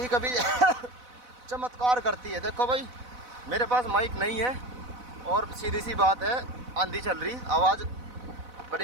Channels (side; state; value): left; late; 4.0 ms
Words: कभी चमत्कार करती है। देखो भाई, मेरे पास माइक नहीं है, और सीधी सी बात है, आंधी चल रही, आवाज़